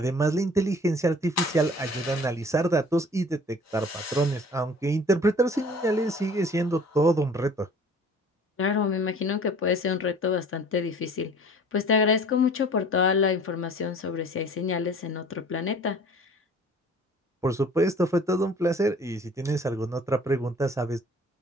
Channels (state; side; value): normal; both; correlation 0.48